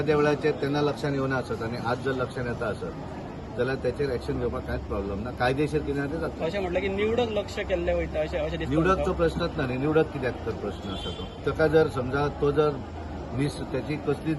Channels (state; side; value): identical; both; correlation 1.00